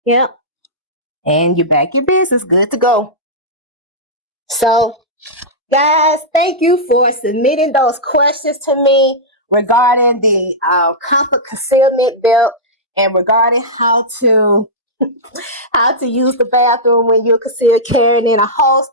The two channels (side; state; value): both; normal; correlation -0.12